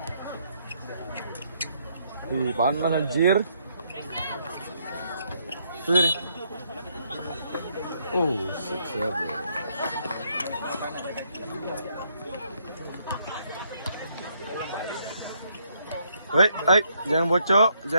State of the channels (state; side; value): inverted; both; correlation -0.72